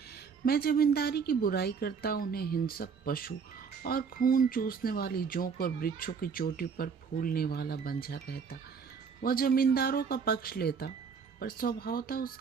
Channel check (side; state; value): left; quieter; 6.0 dB